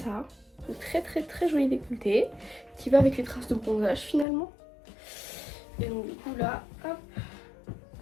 une très joli décolleté qui va avec les traces de bronzage finalement. Et donc du coup là, hop.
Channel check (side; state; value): right; drops out; at 4.2 s